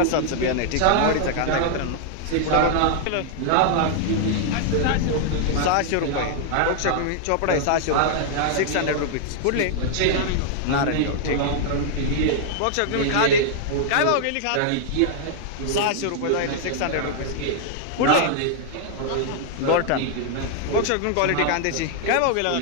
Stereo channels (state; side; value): different; both; correlation -0.01